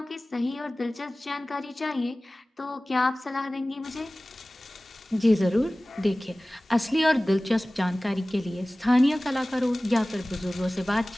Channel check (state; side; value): normal; both; correlation 0.98